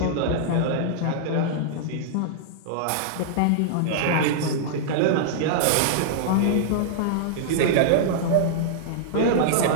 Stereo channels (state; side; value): different; both; correlation -0.02